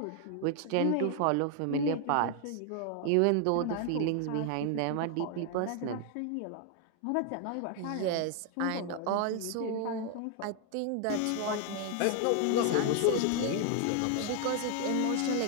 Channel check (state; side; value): different; both; correlation 0.00